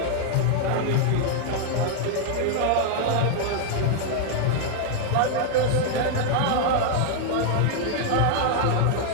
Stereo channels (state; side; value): different; both; correlation 0.00